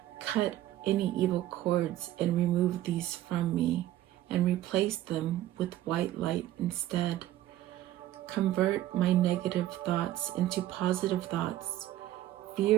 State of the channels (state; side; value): quieter; left; 14.0 dB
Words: Cut any evil cords and remove these from me and replace them with white light instead. Convert my negative thoughts into positive thoughts,